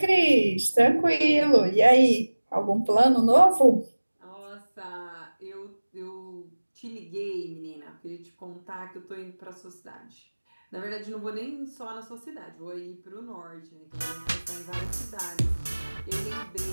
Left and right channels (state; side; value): inverted; both; correlation -1.00